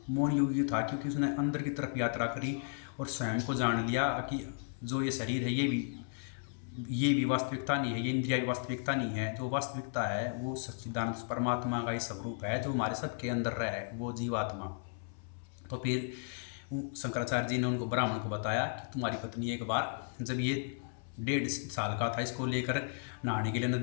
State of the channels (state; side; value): silent; right; 55 dB below the other